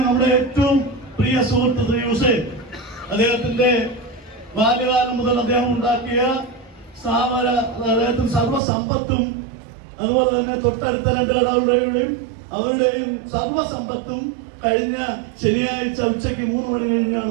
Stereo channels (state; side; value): drops out; left; at 8.6 s